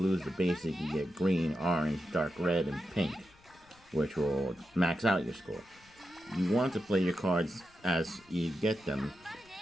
is the basic. You get green, orange, dark red, and pink, which will max out your score. You want to play your cards as you get them.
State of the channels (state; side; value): noise; left; rumble, 28 dB below the sound